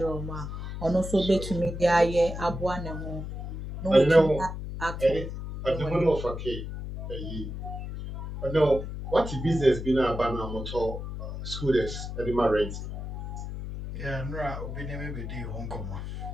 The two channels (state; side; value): noise; left; hum, 7 dB below the sound